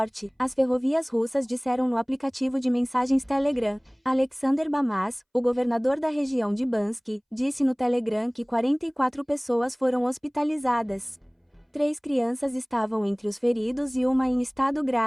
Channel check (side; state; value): both; identical; correlation 1.00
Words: as ferrovias russas disseram no aplicativo de mensagens Telegram. Alexander Bamas, o governador da região de Bansk, disse no Telegram que 44 pessoas foram hospitalizadas. 3 crianças estavam entre os feridos e uma em estado